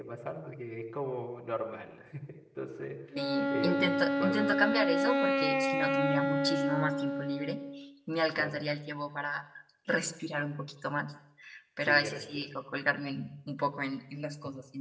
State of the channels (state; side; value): identical; both; correlation 1.00